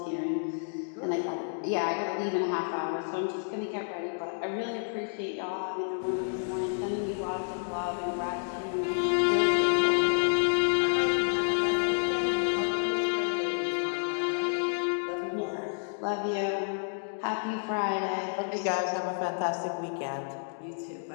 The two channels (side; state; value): right; silent; digital silence